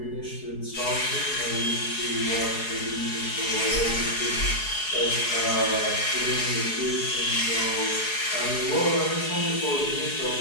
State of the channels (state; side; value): late; right; 4.7 ms